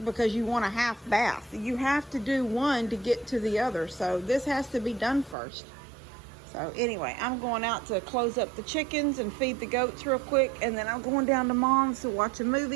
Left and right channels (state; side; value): drops out; left; at 5.4 s